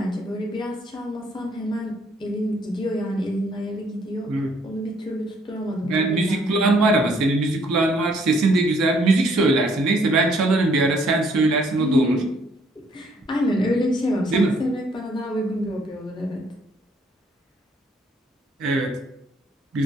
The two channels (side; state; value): both; normal; correlation 0.65